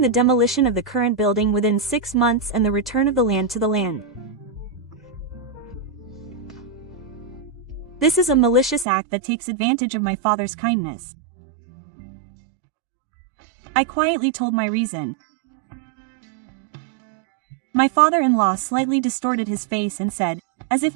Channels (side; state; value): left; drops out; at 8.8 s